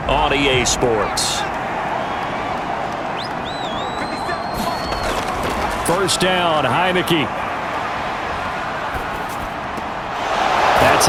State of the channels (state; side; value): identical; both; correlation 1.00